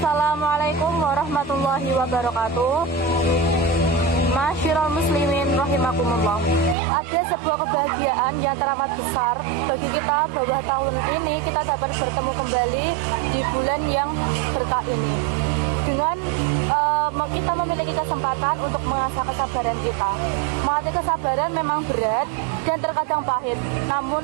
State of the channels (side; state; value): left; drops out; at 6.8 s